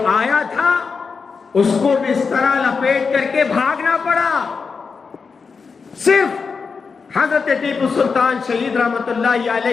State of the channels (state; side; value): quieter; right; 5.2 dB